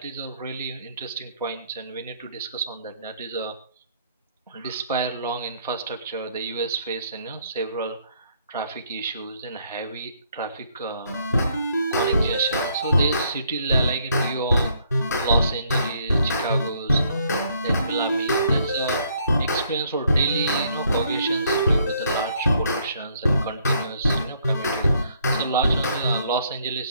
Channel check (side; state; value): both; inverted; correlation -0.67